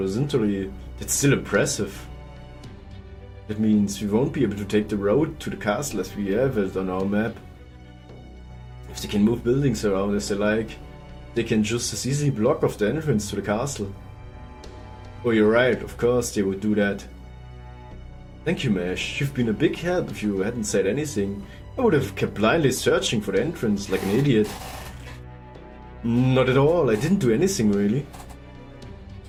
that's still impressive. That means we won't be able to take the road to the castle as we have it on our map. If they can move buildings around as they like, they can just as easily block off the entrance to the castle. Oh, you're right, of course they would do that. Thank you, Mesh. You've been a big help. If you hadn't said anything, I would have kept blindly searching for the entrance like an idiot. Not at all, I didn't do anything really.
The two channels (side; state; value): both; identical; correlation 1.00